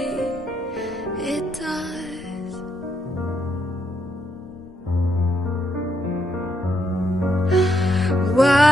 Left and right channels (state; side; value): normal; both; correlation 0.78